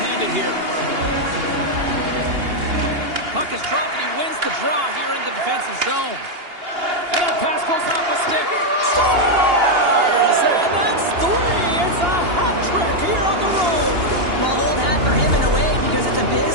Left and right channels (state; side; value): late; left; 2.8 ms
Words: here. puck is dropped, and he wins the draw here in the defensive zone. And that pass goes off a stick. Scores! And that's 3. It's a hat trick here on the road. Well, old hat for him in a way because it's a